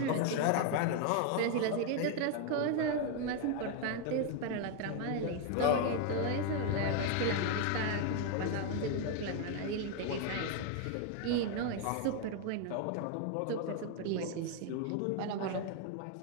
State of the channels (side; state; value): both; different; correlation 0.01